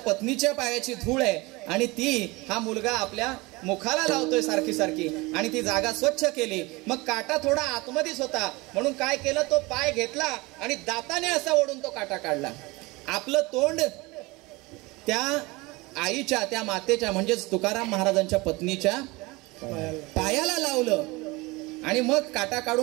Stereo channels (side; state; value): left; quieter; 23.5 dB